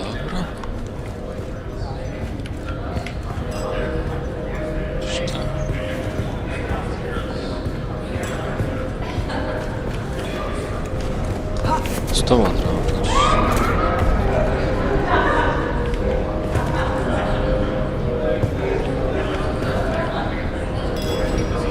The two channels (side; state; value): both; identical; correlation 1.00